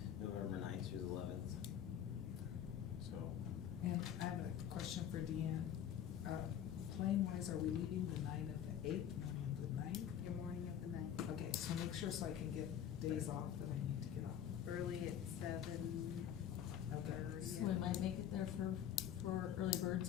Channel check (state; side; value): quieter; right; 9.7 dB